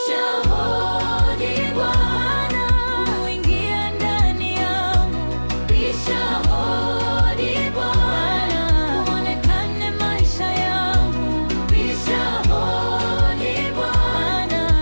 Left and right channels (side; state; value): both; inverted; correlation -1.00